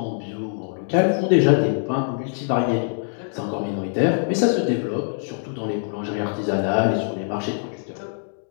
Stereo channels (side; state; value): right; silent; digital silence